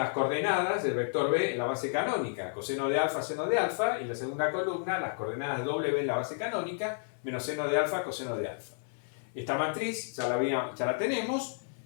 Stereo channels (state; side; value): silent; right; 57 dB below the other